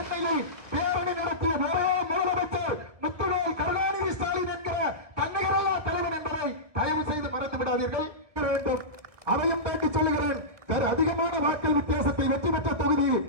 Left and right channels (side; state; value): left; late; 1.7 ms